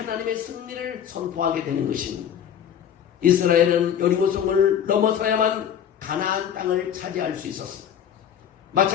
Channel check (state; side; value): quieter; right; 9.0 dB